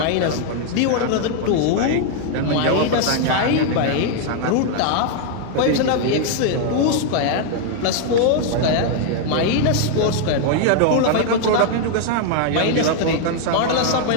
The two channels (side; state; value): both; different; correlation 0.00